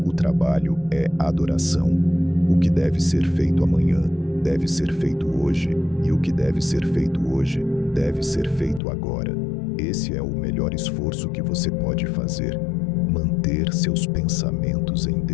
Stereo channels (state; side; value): drops out; right; at 8.8 s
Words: O trabalho é adoração. O que deve ser feito amanhã deve ser feito hoje. E o que deve ser feito hoje deve ser feito agora. Esse é o melhor esforço que você pode fazer. Manter seus pensamentos em